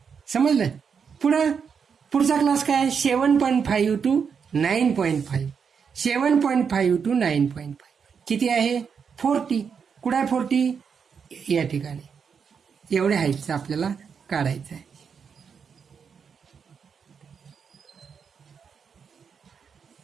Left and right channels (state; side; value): quieter; left; 6.5 dB